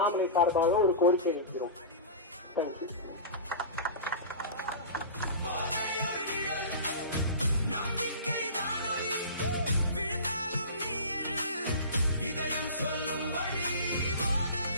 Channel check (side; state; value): both; inverted; correlation -0.33